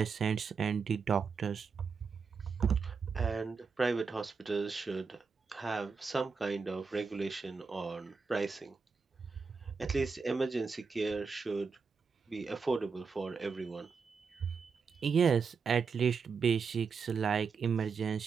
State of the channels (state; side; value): quieter; left; 5.3 dB